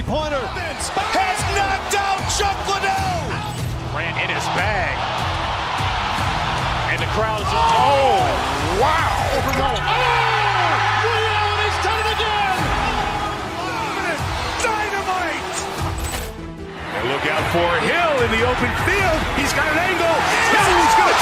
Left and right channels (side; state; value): both; identical; correlation 1.00